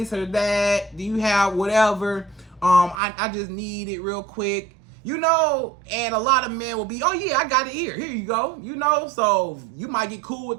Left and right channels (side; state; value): left; drops out; at 3.0 s